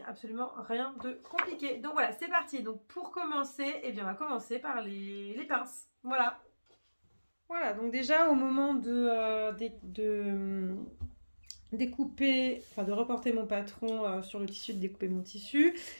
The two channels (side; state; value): both; inverted; correlation -1.00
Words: a absolument rien de compliqué. Donc voilà, c'est parti. Donc pour commencer, eh bien, on va commencer par les pinces. Voilà. Voilà, donc déjà au moment de découper, enfin de reporter mon patron sur le tissu, de découper mon tissu,